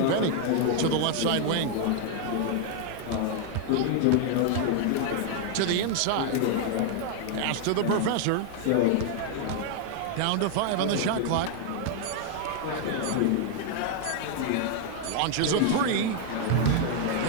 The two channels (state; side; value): different; both; correlation 0.00